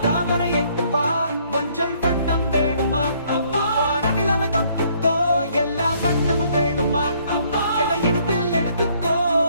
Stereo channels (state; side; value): inverted; both; correlation -0.65